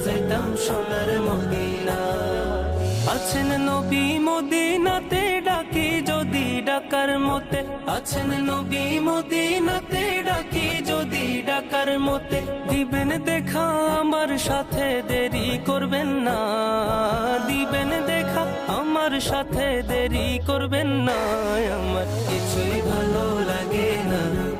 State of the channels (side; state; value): both; identical; correlation 1.00